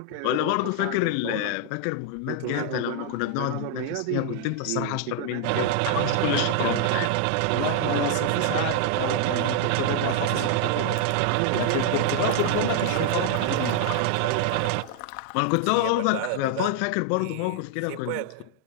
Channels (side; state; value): both; different; correlation 0.00